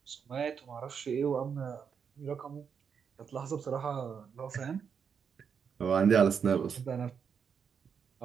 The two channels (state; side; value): quieter; left; 6.8 dB